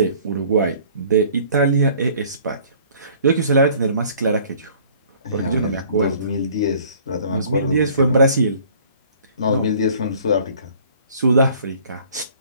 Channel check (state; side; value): inverted; both; correlation -0.53